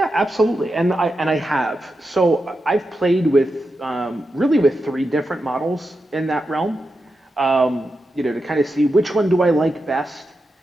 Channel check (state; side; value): normal; both; correlation 0.88